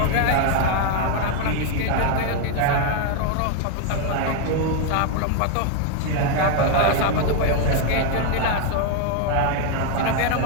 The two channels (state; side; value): different; both; correlation 0.01